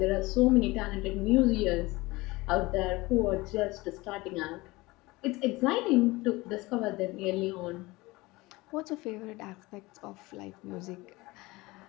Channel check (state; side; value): quieter; right; 21.5 dB